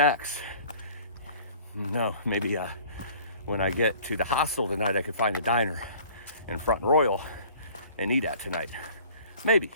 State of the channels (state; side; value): inverted; both; correlation -0.50